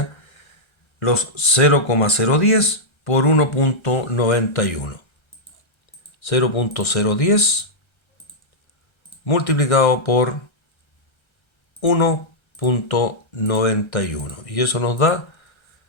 los 0,010 por 1,91. 0,010 multiplicado por 1,91. Y eso nos da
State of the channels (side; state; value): right; late; 1.3 ms